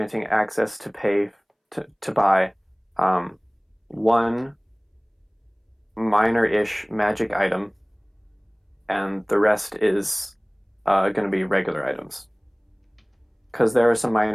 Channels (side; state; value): both; identical; correlation 1.00